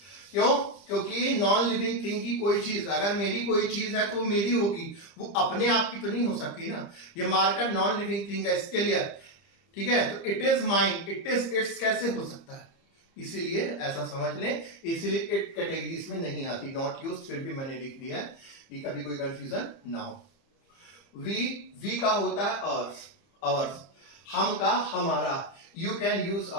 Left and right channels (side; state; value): right; late; 30 ms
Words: क्यों? क्योंकि नॉन लिविंग थिंग की कोई चीज, अगर मेरी कोई चीज है तो मेरी होगी, वो अपने आप की तो नहीं हो सकती ना. ये मार्कर नॉन लिविंग थिंग है, इसके लिए, ठीक है? तो it is mine, it is it's कैसे हो सकता है? इसीलिए ऐसा समझ लें, इसीलिए इट कैटेगरीज में नहीं आती, नॉट यूज्ड, फिर भी मैंने लिख दिया है कि कभी कोई कंफ्यूजन ना हो. वी का होता है अवर्स, अवर्स. हम का हमारा, यू कैन यूज